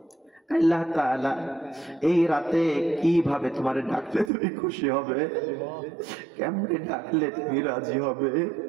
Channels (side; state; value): left; drops out; at 4.3 s